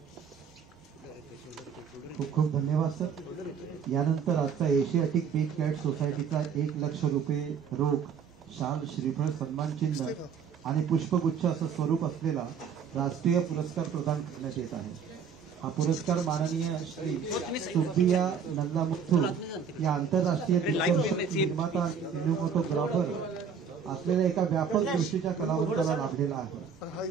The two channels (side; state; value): left; quieter; 6.7 dB